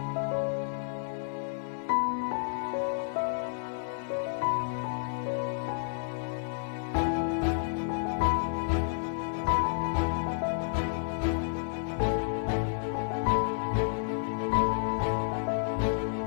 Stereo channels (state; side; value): silent; right; 57 dB below the other